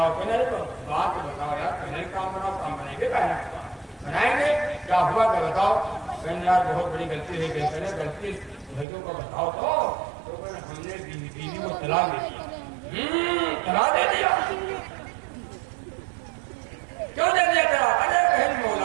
کہنے تو بات بتاؤ یار پہلے کام بناؤ. کام بنائیں گے بنائیں گے کیا ہوا کہ بتاؤ. کہنے یار بہت بڑی غلطی ہے. کہتے ہیں غلطی بھائیوں کو بتاؤ تو ہم نے بیوی کو طلاق دے دیا. طلاق دے دیا. کیوں دے دیا طلاق؟ ارے بہن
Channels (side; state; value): left; drops out; at 8.8 s